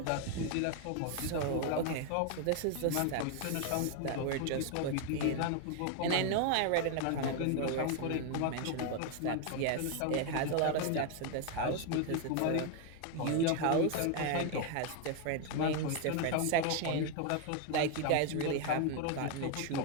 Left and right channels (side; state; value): both; different; correlation 0.01